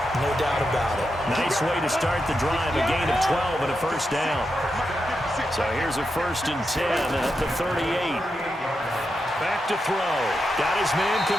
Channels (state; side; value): normal; both; correlation 0.86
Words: No doubt about it. Nice way to start the drive. A gain of 12 and a first down. So here's a 1st and 10 at the 38. Back to throw. Got his man